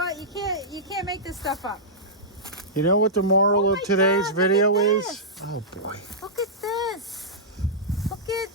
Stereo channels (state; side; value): normal; both; correlation -0.14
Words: You can't make this stuff up. You know what the moral Oh of my today's God, video look at is? this. Oh boy. Look at this.